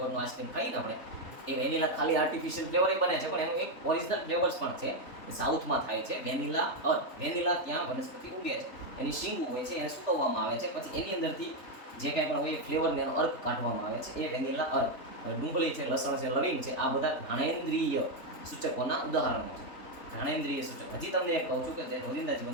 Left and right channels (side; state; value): right; late; 3.6 ms